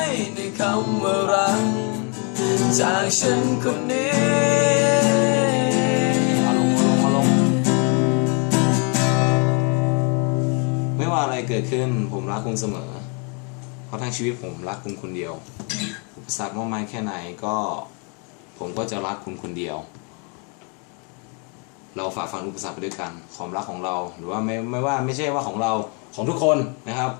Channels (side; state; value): right; quieter; 36.1 dB